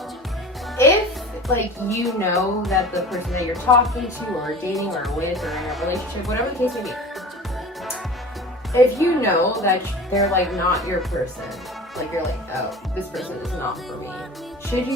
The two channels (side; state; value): both; normal; correlation 0.37